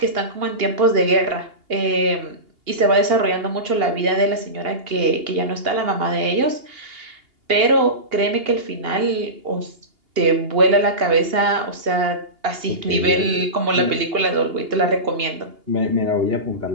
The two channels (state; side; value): late; left; 2.8 ms